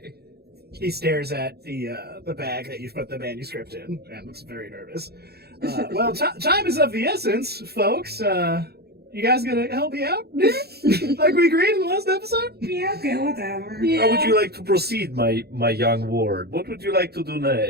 He stares at the bag that you've put the manuscript in and looks very nervous. Well, time is of the essence, folks. You guys gonna help me out? Like we agreed in the last episode? Yeah, okay, whatever. Yeah. How would you like to proceed, my young ward? What would you like to do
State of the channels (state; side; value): late; left; 0.46 ms